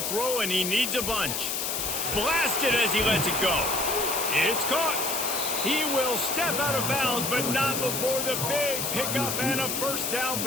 throw, and he needs a bunch. Blasted as he lets it go. It's caught. He will step out of bounds, but not before the big pickup and a first down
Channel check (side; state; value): left; noise; hiss, 1 dB below the sound